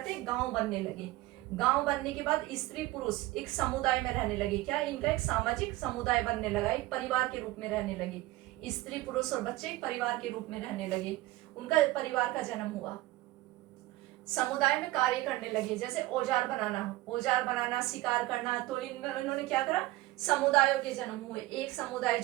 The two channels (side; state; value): left; quieter; 18.1 dB